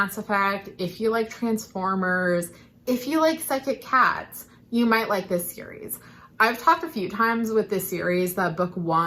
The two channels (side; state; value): both; identical; correlation 1.00